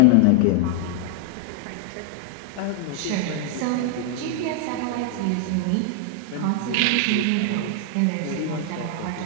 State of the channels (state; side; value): different; both; correlation 0.00